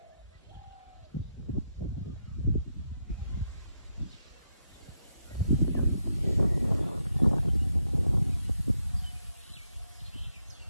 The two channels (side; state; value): both; inverted; correlation -0.80